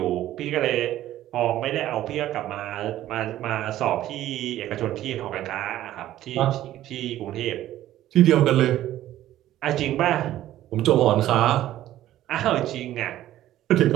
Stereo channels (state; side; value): quieter; left; 13.5 dB